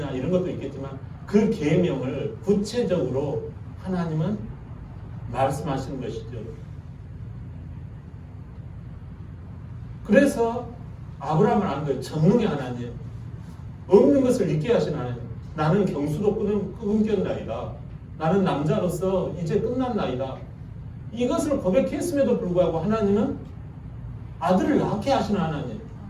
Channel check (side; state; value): both; identical; correlation 1.00